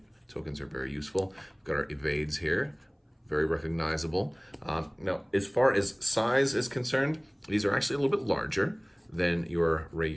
tokens are very useful. We've got our Evades here. Very recognizable. Now, as far as size is concerned, these are actually a little bit larger than your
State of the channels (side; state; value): both; identical; correlation 1.00